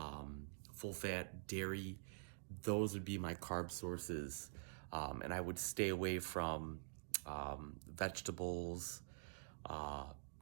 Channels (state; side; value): silent; left; digital silence